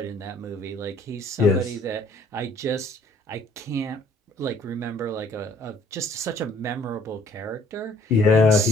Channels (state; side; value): normal; both; correlation 0.59